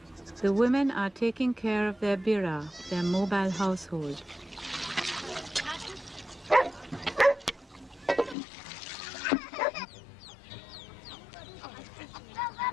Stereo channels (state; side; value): drops out; right; at 8.3 s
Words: The women are taking care of their bira, their mobile household.